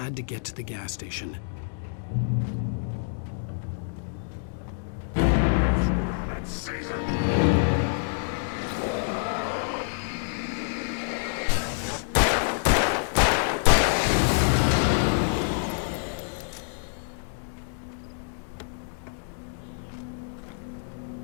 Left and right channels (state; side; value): silent; right; digital silence